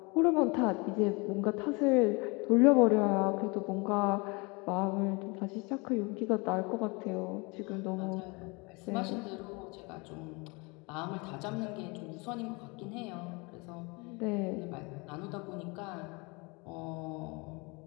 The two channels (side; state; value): right; quieter; 28.2 dB